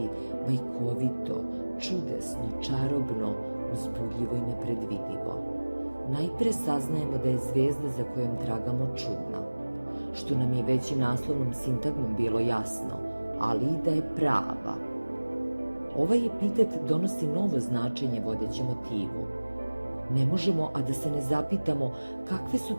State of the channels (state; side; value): inverted; both; correlation -1.00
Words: bajkovito, čudesno, čarobno, uzbudljivo i nepredvidivo. Najpre saznajemo da je zvezda za kojom tragamo čudna, što nam je već i naslovnom sintagmom bilo jasno, ali i da je prava. Ovaj epitet donosi novo značenje vodećem motivu. Ne možemo, a da se ne zapitamo kakve su